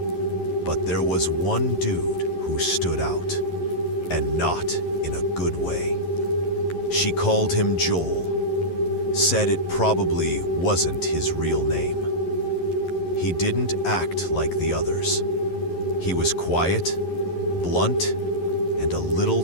But there was one dude who stood out, and not in a good way. She called him Joel, said it probably wasn't his real name. He didn't act like the others. He was quiet, blunt, and a little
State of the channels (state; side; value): late; right; 11 ms